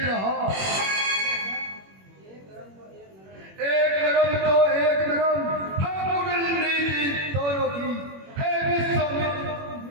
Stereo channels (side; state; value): left; late; 21 ms